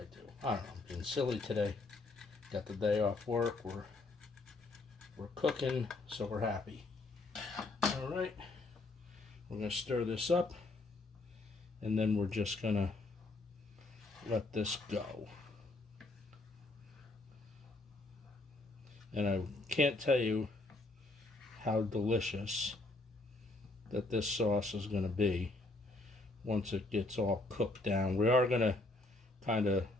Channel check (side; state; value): right; quieter; 3.0 dB